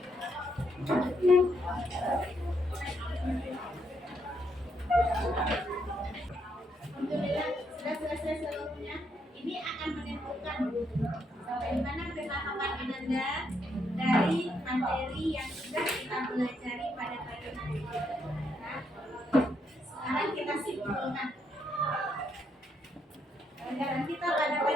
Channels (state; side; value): normal; both; correlation 0.76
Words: Alhamdulillah sudah selesai seluruhnya. Ini akan menentukan sampai di mana pemahaman Ananda dari materi yang sudah kita pelajari pada pagi hari ini. Nah, sekarang kita simpulkan. Pelajaran kita pada